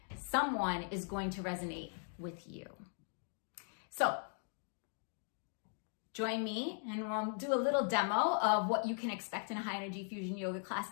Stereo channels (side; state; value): right; silent; 52 dB below the other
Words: Someone is going to resonate with you. So join me and we'll do a little demo of what you can expect in a High Energy Fusion Yoga class